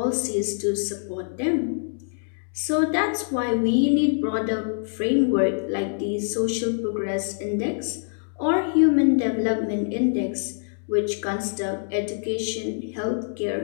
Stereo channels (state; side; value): silent; right; digital silence